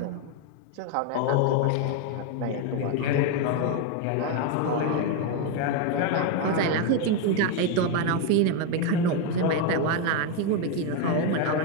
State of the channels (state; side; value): different; both; correlation 0.02